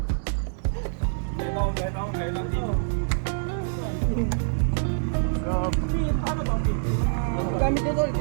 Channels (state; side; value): silent; left; 61 dB below the other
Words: Gamit nyo tol,